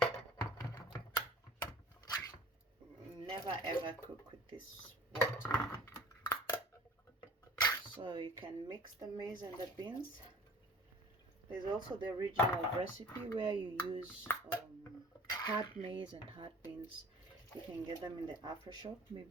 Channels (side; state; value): both; normal; correlation 0.47